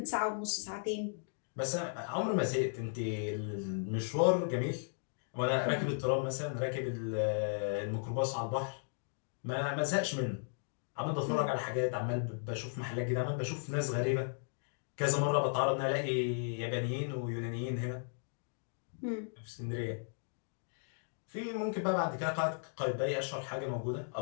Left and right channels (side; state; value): right; silent; digital silence